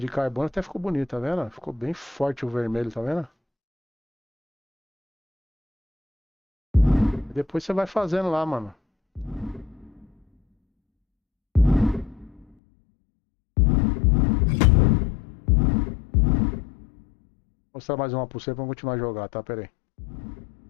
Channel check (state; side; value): drops out; right; at 12.5 s